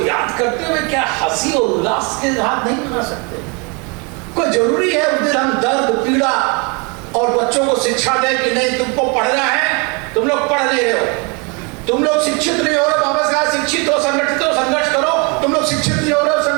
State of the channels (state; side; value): quieter; left; 31.7 dB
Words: याद करते हुए क्या हंसी और उल्लास के साथ नहीं मना सकते? कोई जरूरी है उस दिन हम दर्द, पीड़ा और बच्चों को शिक्षा दें कि नहीं तुमको पढ़ना है, तुम लोग पढ़ नहीं रहे हो, तुम लोग शिक्षित नहीं हो रहे, बाबा साहब शिक्षित हो, संगठित हो, संघर्ष करो, तुम लोग शिक्षित नहीं हो रहे,